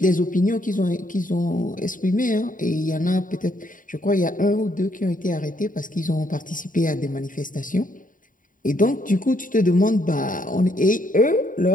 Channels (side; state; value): right; late; 0.39 ms